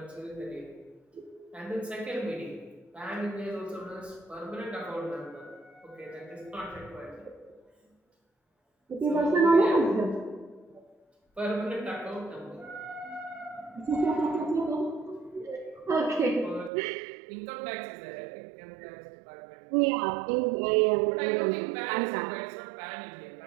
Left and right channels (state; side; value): drops out; left; at 16.7 s